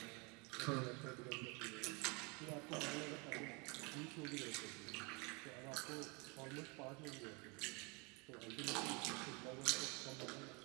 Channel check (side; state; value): left; quieter; 30.0 dB